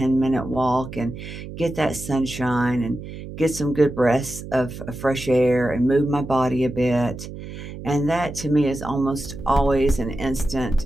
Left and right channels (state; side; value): noise; right; hum, 11 dB below the sound